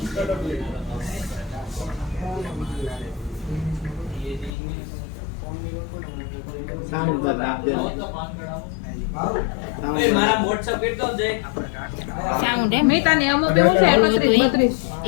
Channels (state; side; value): drops out; right; at 4.5 s